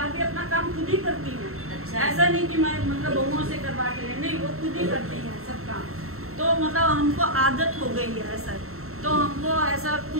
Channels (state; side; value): late; left; 0.63 ms